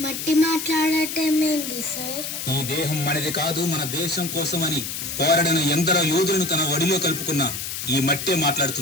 మట్టి మాట్లాడటం ఏంటి సార్? ఈ దేహం మనది కాదు, మన దేశం కోసం అని పోరాడిన ఎందరో యోధులను తన ఒడిలో కలుపుకున్న ఈ మట్టే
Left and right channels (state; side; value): noise; left; hiss, 5 dB below the sound